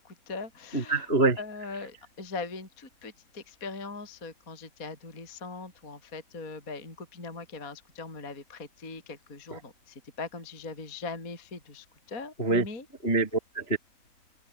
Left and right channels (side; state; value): right; late; 4.1 ms